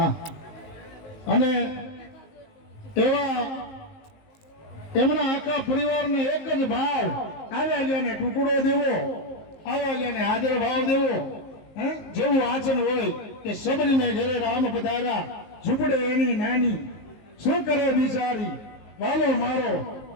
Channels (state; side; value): late; right; 19 ms